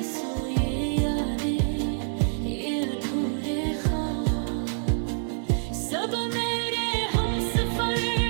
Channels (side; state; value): left; silent; digital silence